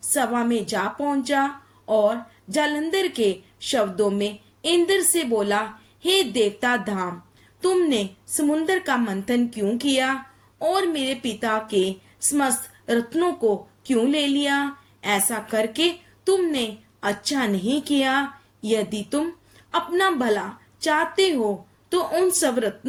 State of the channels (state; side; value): identical; both; correlation 1.00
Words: सभा में जा पहुंचा और जालंधर के शब्दों में इंद्र से बोला, हे देवता धाम, तुमने समुद्र का मंथन क्यों किया और मेरे पिता के समस्त रत्नों को क्यों ले लिया? ऐसा करके तुमने अच्छा नहीं किया। यदि तुम अपना भला चाहते हो तो उन सब